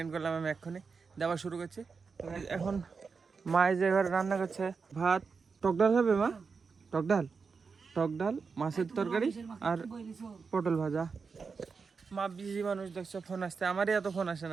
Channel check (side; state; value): left; quieter; 5.1 dB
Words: করলাম আমি এক্ষুনি, দেওয়া শুরু করছি। তো এখন মা যে ঘরে রান্না করছে, ভাত, টক ডাল হবে মা, টক ডাল মাছের তরকারি আর পটল ভাজা। মা বিজি মানুষ দেখছো, ফোন আসছে, আমারই এত ফোন আসে